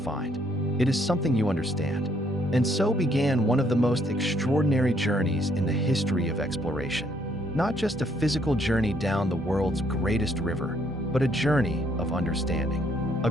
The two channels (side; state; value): both; normal; correlation 0.69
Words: It is something you understand." And so began one of the most extraordinary journeys in the history of exploration. Not just a physical journey down the world's greatest river, but a journey of understanding. A